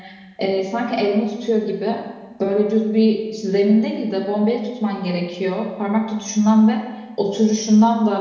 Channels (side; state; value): both; identical; correlation 1.00